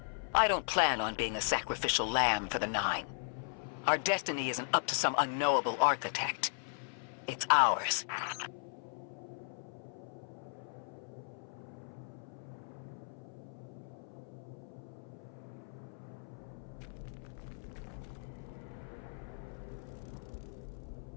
I don't plan on being a sacrificial lamb for the 9. Our destiny isn't up to some unknowable architect. It's ours.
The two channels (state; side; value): silent; right; 53 dB below the other